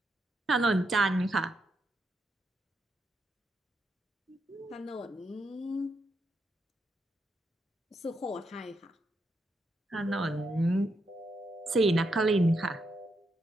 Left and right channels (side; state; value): both; normal; correlation 0.81